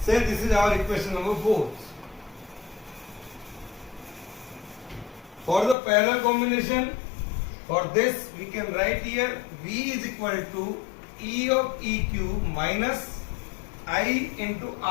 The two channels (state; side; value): drops out; right; at 5.8 s